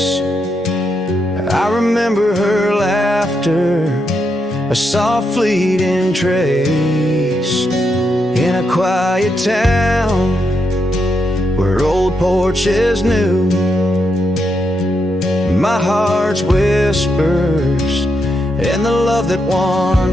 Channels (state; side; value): normal; both; correlation 0.82